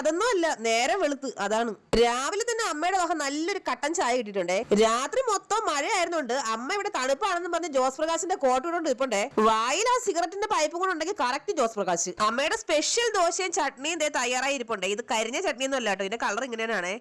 അല്ല, നേരെ വെളുത്ത്. അതാണ് രാവിലെ തന്നെ അമ്മയുടെ വക നല്ലൊരു കട്ടൻ ചായ കിട്ടിയിട്ടുണ്ടേ. രാത്രി മൊത്തം മഴയായിരുന്നുണ്ട് അമ്മ ഇവിടെ തണുപ്പാണെന്ന് പറഞ്ഞ് ജോസ് പ്രകാശിന്റെ കോട്ട് കൊണ്ട് ഇപ്പണ്ടേ. വായിൽ ആ സിഗരറ്റിന്റെ പൈപ്പ് കൂടെ ഉണ്ടെങ്കിൽ കറക്റ്റ് ജോസ് പ്രകാശ്. അമ്മയുടെ സ്പെഷ്യൽ ദോശയും ചട്നിയും തയ്യാറായി ഇരിപ്പുണ്ടേ. ഇത് കരിഞ്ഞ ചട്നിയൊന്നും അല്ല കേട്ടോ, ഇതിന്റെ കളർ ഇങ്ങനെയാണ്.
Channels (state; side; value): identical; both; correlation 1.00